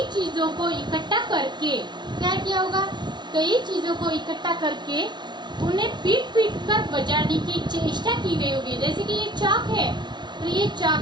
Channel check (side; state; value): left; late; 0.21 ms